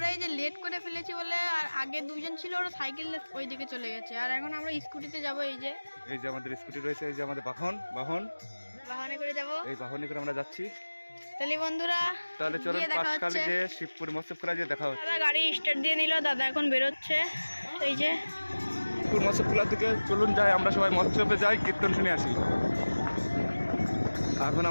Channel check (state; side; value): inverted; both; correlation -1.00